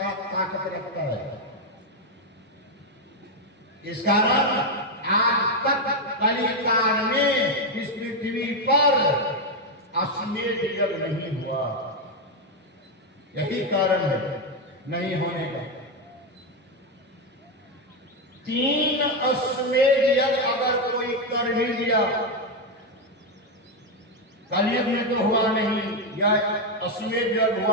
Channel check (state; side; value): normal; both; correlation 0.05